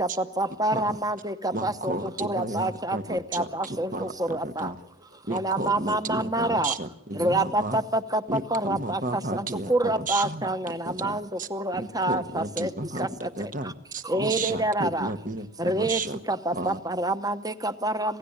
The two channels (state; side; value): normal; both; correlation 0.45